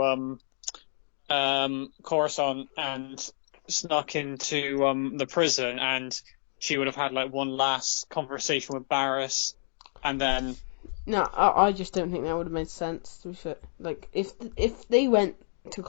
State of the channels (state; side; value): silent; right; digital silence